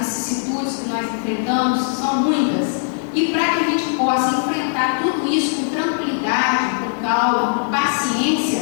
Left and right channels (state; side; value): silent; right; digital silence